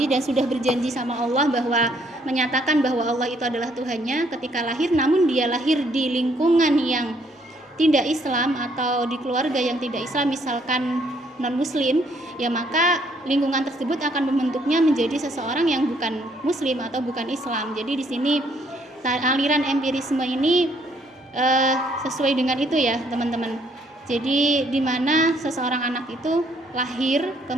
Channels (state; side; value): normal; both; correlation 0.67